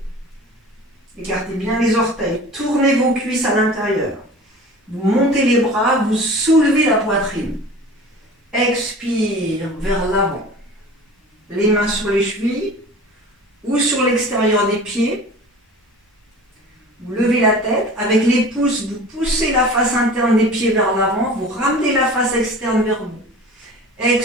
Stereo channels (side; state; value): both; normal; correlation 0.40